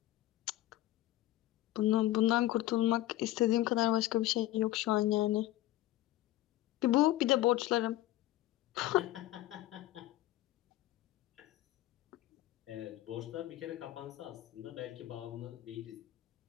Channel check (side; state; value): right; quieter; 15.5 dB